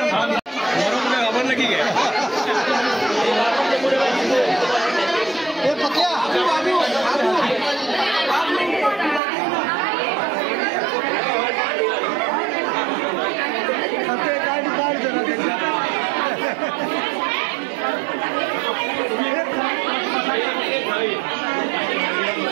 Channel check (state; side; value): drops out; left; at 9.2 s